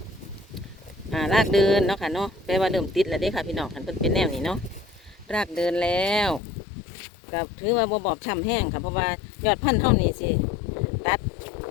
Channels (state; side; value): drops out; right; at 6.4 s